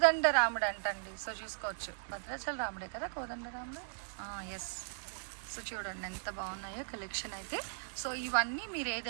రాముడు అంటండి. సో చూసుకోవచ్చు, భద్రాచల రాముడే కదా కోదండ రాముడు. ఎస్. సో చూడండి ఎంత బాగున్నాయో కలెక్షన్ అయితే. సో ఇవన్నీ మీరు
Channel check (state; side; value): silent; left; digital silence